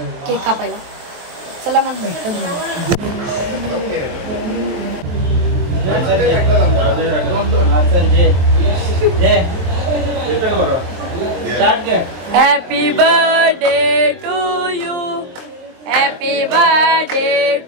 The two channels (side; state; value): left; late; 23 ms